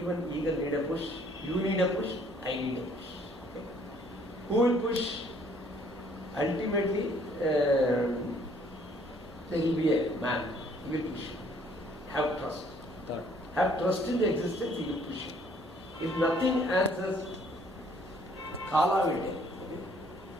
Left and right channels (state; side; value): normal; both; correlation 0.61